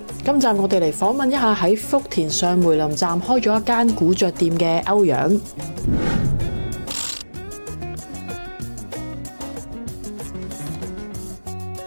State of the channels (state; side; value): inverted; both; correlation -1.00